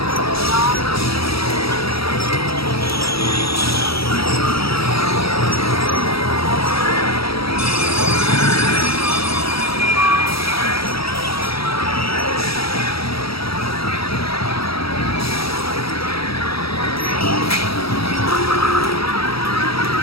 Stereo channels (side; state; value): right; late; 0.76 ms